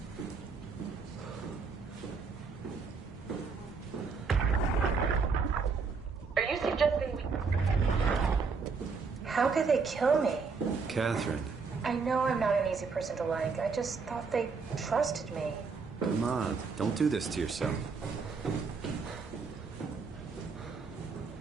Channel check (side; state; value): left; quieter; 5.0 dB